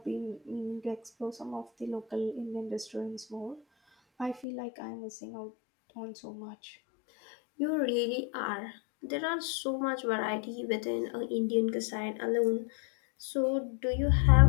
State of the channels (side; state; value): right; drops out; at 4.5 s